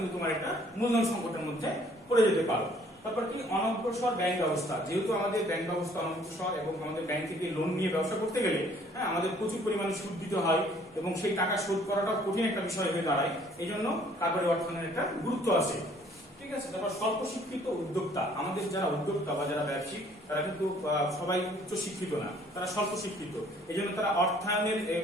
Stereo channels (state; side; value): normal; both; correlation 0.59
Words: তোমার একটা মূলধন সংকটের মধ্যে পড়ে যেতে পারো। তারপর কি, অনগ্রসর ব্যাংক ব্যবস্থা। যেহেতু আমাদের ব্যাংক ব্যবস্থা অনগ্রসর এবং আমাদের ব্যাংক থেকে লোন নিয়ে ব্যবসা করতে গেলে আমাদের প্রচুর পরিমাণে সুদ দিতে হয় এবং সেই টাকা শোধ করাটাও কঠিন একটা বিষয় হয়ে দাঁড়ায়। এই জন্য কারবারি অর্থায়নের একটা গুরুত্ব আছে। ঠিক আছে। তারপর স্বল্প শিক্ষিত উদ্যোক্তা। আমাদের যারা উদ্যোক্তা বা যারা ব্যবসায়িক, তারা কিন্তু সবাই উচ্চ শিক্ষিত না, তারা স্বল্প শিক্ষিত। এই জন্য তারা